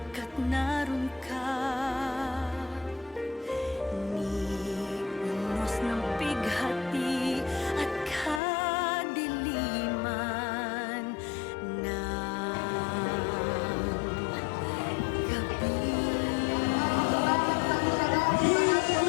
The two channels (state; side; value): drops out; right; at 8.4 s